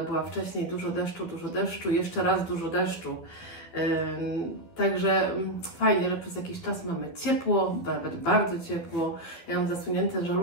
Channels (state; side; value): late; right; 12 ms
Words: wcześniej, dużo deszczu, jeszcze raz dużo deszczu. Także fajnie, że przez jakiś czas mamy ciepło, nawet bardzo ciepło. Ja mam zasunięte